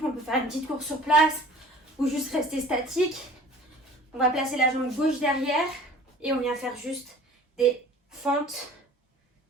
on peut faire une petite course sur place ou juste rester statique. On va placer la jambe gauche derrière et on vient faire juste des fentes.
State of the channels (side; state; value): both; normal; correlation 0.45